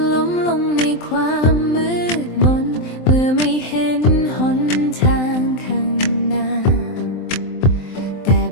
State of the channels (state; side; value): late; right; 23 ms